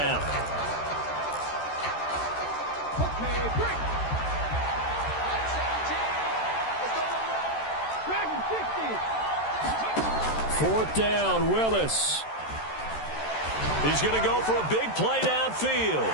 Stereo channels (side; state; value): right; late; 13 ms